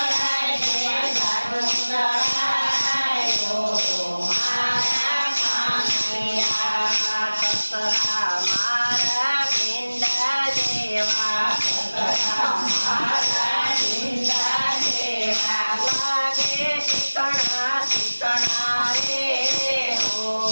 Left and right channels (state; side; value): inverted; both; correlation -1.00